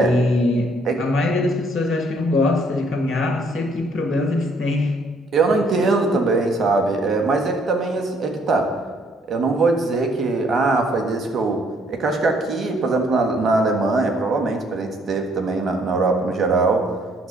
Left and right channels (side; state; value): both; normal; correlation 0.65